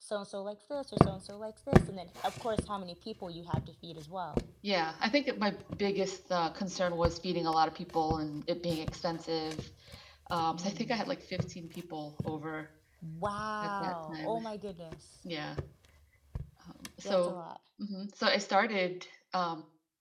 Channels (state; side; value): identical; both; correlation 1.00